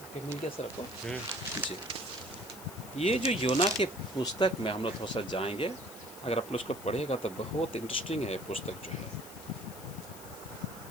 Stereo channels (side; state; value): left; noise; hiss, 15 dB below the sound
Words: मिल गया सर आपको जी। ये जो योना के पुस्तक में हम लोग थोड़ा सा जाएंगे, अगर आप लोग उसको पढ़ेगा तो बहुत इंटरेस्टिंग है। पुस्तक जो है